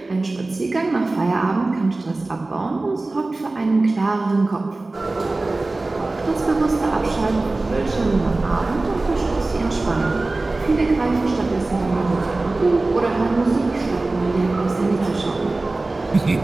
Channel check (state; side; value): quieter; left; 3.1 dB